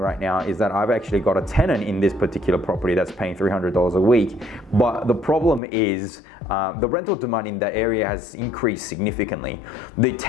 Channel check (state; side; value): drops out; right; at 5.6 s